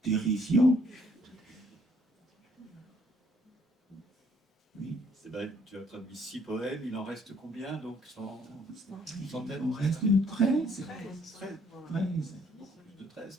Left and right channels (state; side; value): normal; both; correlation 0.64